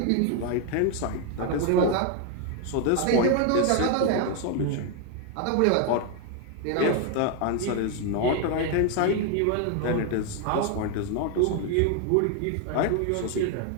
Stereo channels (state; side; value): different; both; correlation 0.01